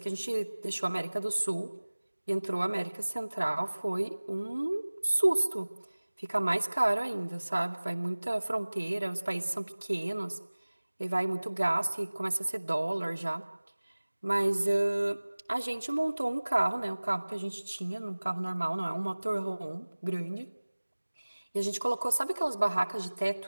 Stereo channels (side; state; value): both; inverted; correlation -1.00